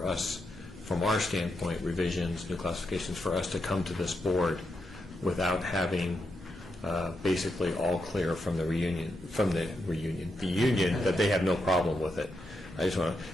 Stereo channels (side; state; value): both; normal; correlation 0.83